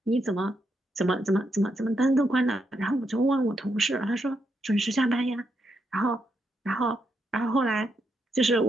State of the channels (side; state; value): both; normal; correlation 0.81